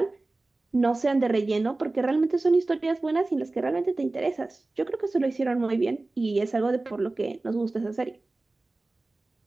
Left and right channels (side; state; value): left; quieter; 3.1 dB